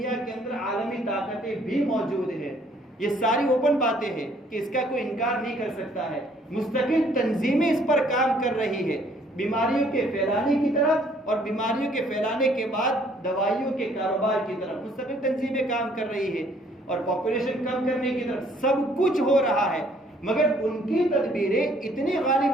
کے اندر عالمی طاقتیں بھی موجود ہیں، یہ ساری اوپن باتیں ہیں کہ اس کا کوئی انکار نہیں کر سکتا ہے. مستقل تنظیمیں اس پر کام کر رہی ہے، بیماریوں کے پھیلانے کی طرف اور بیماریوں کے پھیلانے کے بعد دوائیوں کے کاروبار کی طرف مستقل تنظیمیں کام کر رہی ہے، اور پاپولیشن کم کرنے کی طرف سب کچھ ہو رہا ہے. مگر ان کی تدبیریں اتنی غالب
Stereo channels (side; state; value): both; normal; correlation 0.62